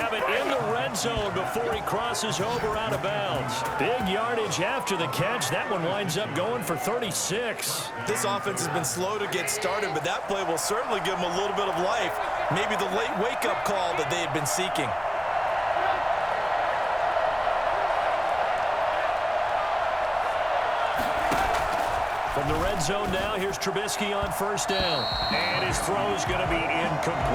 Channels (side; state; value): both; identical; correlation 1.00